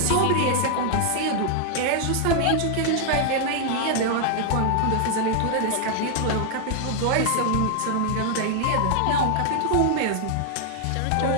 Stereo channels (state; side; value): different; both; correlation 0.00